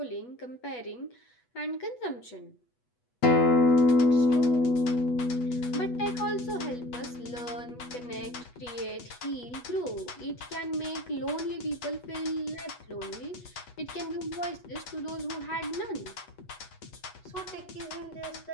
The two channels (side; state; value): right; late; 8.2 ms